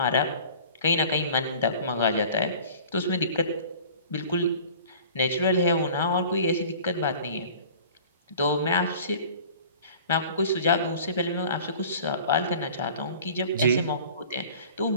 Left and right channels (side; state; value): both; inverted; correlation -0.45